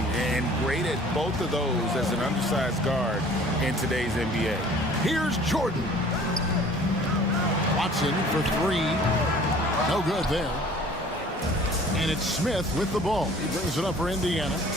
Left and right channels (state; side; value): normal; both; correlation 0.50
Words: and great at both of those as an undersized guard in today's NBA. Here's Jordan. Watson for three. No good there. And it's Smith with the ball. He brings it up for Indiana.